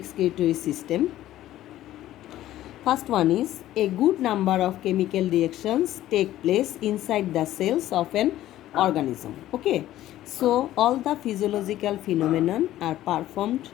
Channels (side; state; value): right; quieter; 13.9 dB